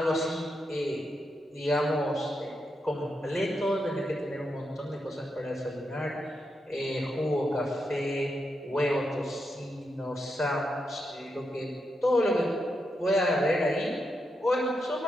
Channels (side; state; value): both; normal; correlation 0.84